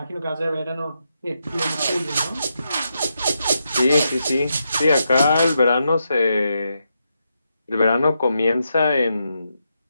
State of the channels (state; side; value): inverted; both; correlation -0.84